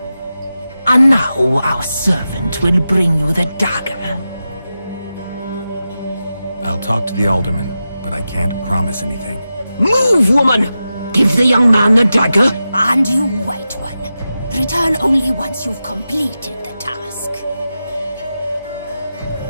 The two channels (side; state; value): both; inverted; correlation -0.92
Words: And now our servant will bring you the dagger. I'll talk to the alderman, but I can't promise anything. Move, woman! Give the young man the dagger. And you, white one, return only once you've completed the task.